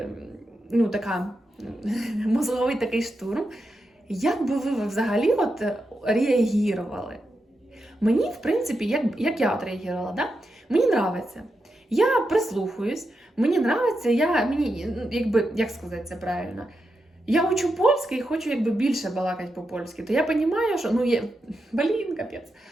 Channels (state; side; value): normal; both; correlation 0.86